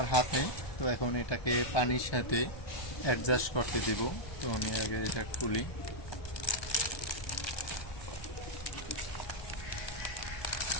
হাতে, তো এখন এটাকে পানির সাথে অ্যাডজাস্ট করতে দিব। তো আমি আগে এটা খুলি।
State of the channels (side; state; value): right; late; 1.2 ms